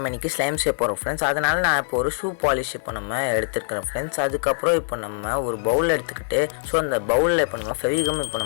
இன்றைக்கி ஸ்லைம் செய்ய போகிறோம் ஃப்ரெண்ட்ஸ். அதனால் நான் இப்போ ஒரு ஷூ பாலிஷ் இப்போ நம்ம எடுத்துருக்கிறோம் ஃப்ரெண்ட்ஸ். அதுக்கப்புறம் இப்போ நம்ம ஒரு பவுல் எடுத்துக்கிட்டு அந்த பவுலில் இப்போ நம்ம ஃபெவிகம் இப்போ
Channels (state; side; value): silent; right; digital silence